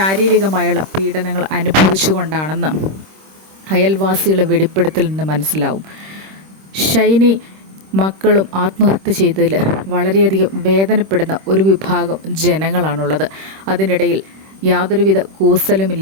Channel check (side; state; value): left; late; 26 ms